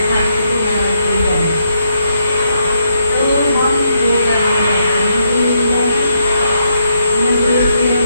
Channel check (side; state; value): both; inverted; correlation -0.78